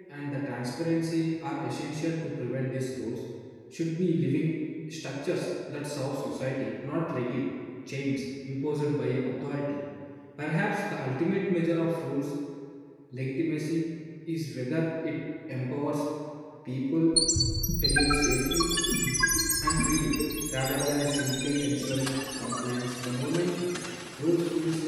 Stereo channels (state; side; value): identical; both; correlation 1.00